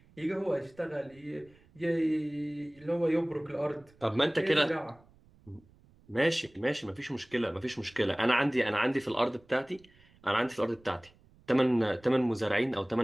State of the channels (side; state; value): right; noise; rumble, 29 dB below the sound